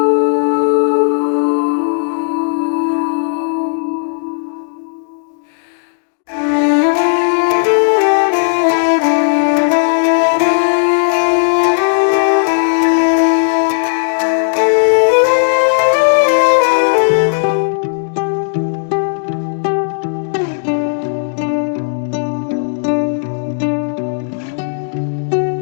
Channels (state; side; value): silent; right; digital silence